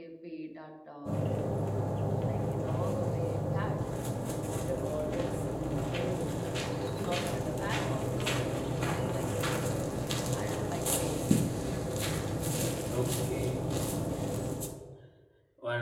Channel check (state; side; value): identical; both; correlation 1.00